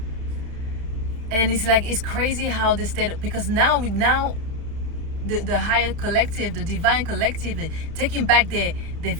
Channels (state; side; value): late; left; 31 ms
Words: And it's like, it's crazy how the state, because now the higher collective, the divine collective, taking back their